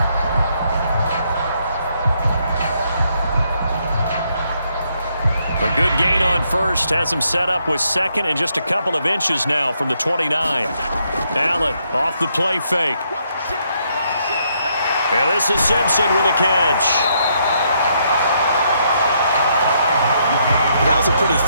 Good gain on first. Has him set up with second and just a couple of inches now from the 29. Allen off the play fake. And this is Simpson with a catch. That was a pretty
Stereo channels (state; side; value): inverted; both; correlation -0.74